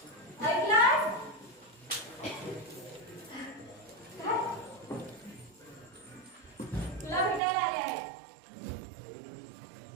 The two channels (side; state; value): left; drops out; at 7.4 s